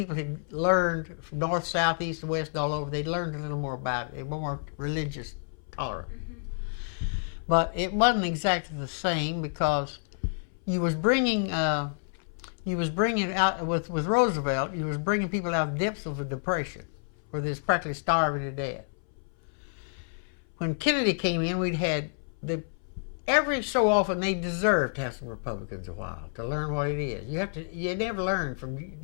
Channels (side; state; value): right; silent; 58 dB below the other